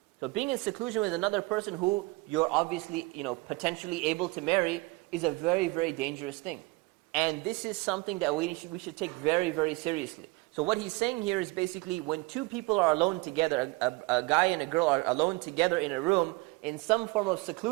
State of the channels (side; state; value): left; quieter; 23.8 dB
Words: So being in seclusion with another person who you're obviously, potentially able to marry is a very, very dangerous thing. And this is something that we should take very, very seriously. So what he's saying here is basically when 2 people are alone together, a guy and a girl are alone together in a room in some form of